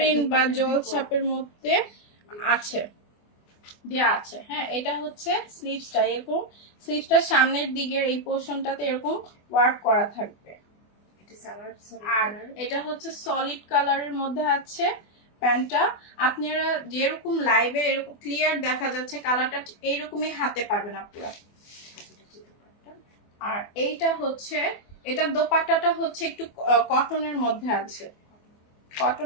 বা জল ছাপের মধ্যে আছে, দেয়া আছে, হ্যাঁ। এটা হচ্ছে স্লিভসটা, এরকম স্লিভসটার সামনের দিকের এই পোর্শনটাতে এরকম ওয়ার্ক করা থাকবে। আর এটা হচ্ছে সলিড কালারের মধ্যে আছে প্যান্টটা। আপনারা যেরকম লাইভে এরকম ক্লিয়ার দেখা যাচ্ছে কালারটা, এইরকমই হাতে পাবেন আপনারা। আর এইটা হচ্ছে, এটার দোপাট্টাটা হচ্ছে একটু কটনের মধ্যে আছে,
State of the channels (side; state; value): right; late; 24 ms